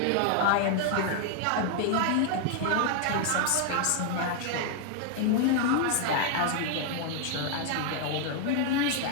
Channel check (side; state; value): both; different; correlation 0.00